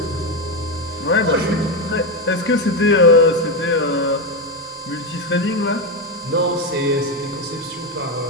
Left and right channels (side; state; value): both; normal; correlation 0.10